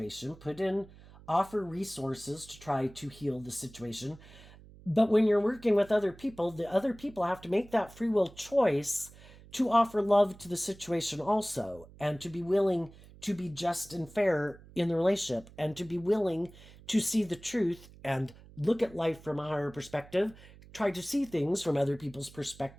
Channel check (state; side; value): noise; right; hum, 21 dB below the sound